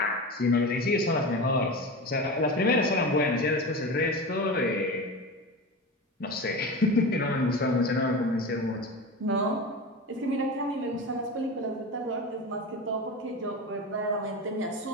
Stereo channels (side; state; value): both; normal; correlation 0.26